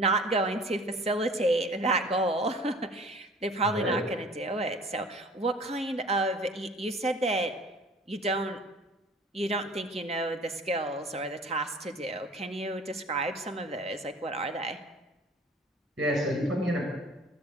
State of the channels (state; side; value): normal; both; correlation 0.47